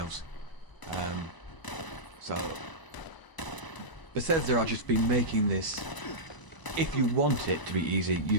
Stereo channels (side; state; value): right; late; 1.0 ms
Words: So Bethesda are just been making this. If you want it to be easy,